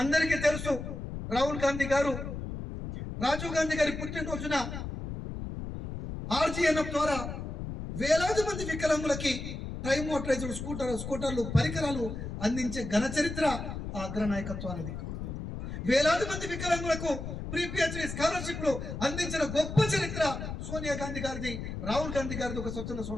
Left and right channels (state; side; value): noise; left; rumble, 6 dB below the sound